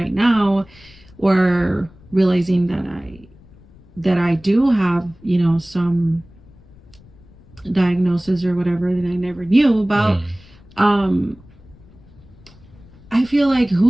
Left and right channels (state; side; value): noise; left; rumble, 25 dB below the sound